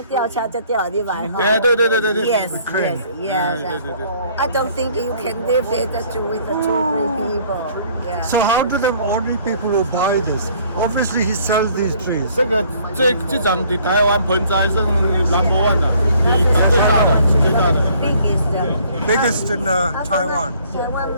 吊车就吊你买哈。哎，对。 Yes, crane. yes, yes. 对。 I don't think you can live it with the 2-3 people. Yeah. So how do the ordinary people who buy this? Obviously he sells these trees. 这张在台湾盆栽是number one 的，最大的，最大的。 Biggest. Biggest in Taiwan. 台湾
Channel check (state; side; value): inverted; both; correlation -0.59